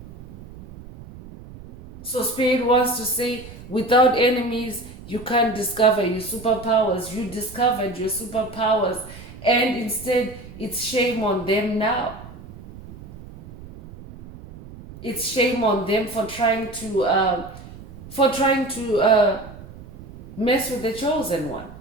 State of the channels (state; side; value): noise; right; rumble, 16 dB below the sound